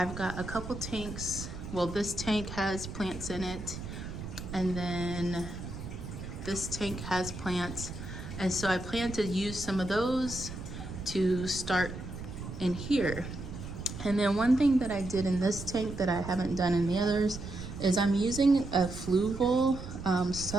got a couple tanks. Well, this tank has plants in it, and then this tank has plants. And so I plan to use some of those to start in here. And then one thing that I did in this tank that I haven't done in the others is I'm using a fluval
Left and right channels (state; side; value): noise; right; rumble, 9 dB below the sound